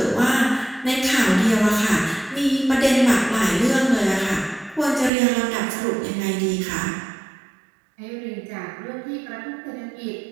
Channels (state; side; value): drops out; left; at 5.1 s